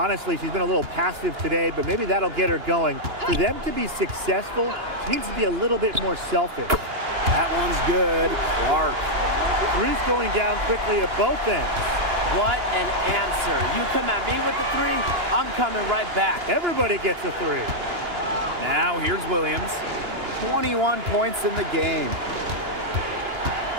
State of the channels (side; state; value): left; late; 2.9 ms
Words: she's been a little passive today, but maybe that'll get her going. For them to be successful, she needs to be a little bit more selfish. That one's good. Clark. Three's going down quickly at both ends. What an answer. You come at me with the 3, I'm coming right back. Everybody gets a 3. Now here's Williams. 21 points in the game.